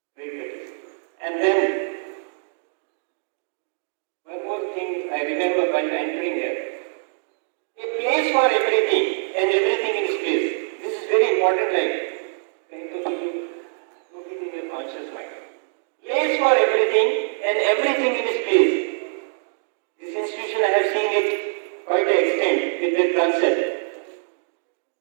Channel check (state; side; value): silent; left; digital silence